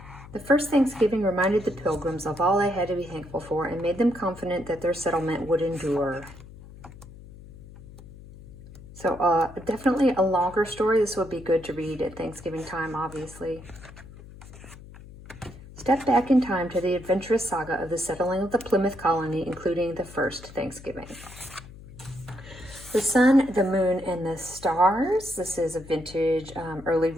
The first Thanksgiving reminded the Pilgrims of all they had to be thankful for and made them confident that their settlement would endure. So definitely a longer story. This would be good to read at Thanksgiving time, obviously. Step back in time to the adventurous saga of the settling of the Plymouth colony, including the first Thanksgiving. The Sun, the Moon, and the Stars. This is a vintage early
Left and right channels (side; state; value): left; noise; hum, 18 dB below the sound